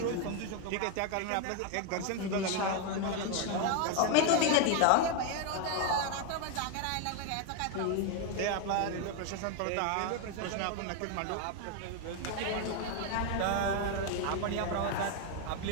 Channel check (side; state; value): both; different; correlation 0.01